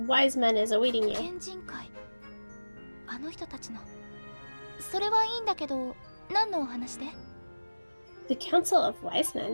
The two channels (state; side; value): inverted; both; correlation -1.00